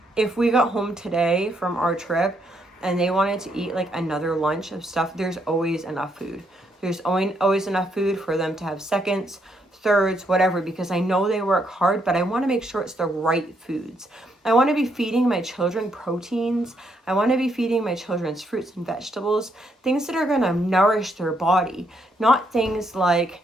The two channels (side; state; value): both; normal; correlation 0.75